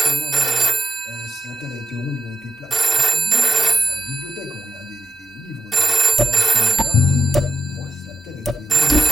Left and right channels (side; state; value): both; normal; correlation 0.77